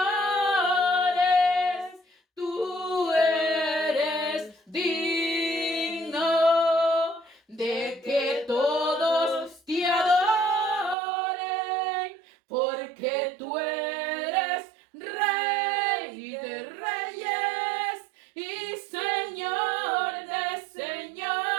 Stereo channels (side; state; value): left; drops out; at 11.0 s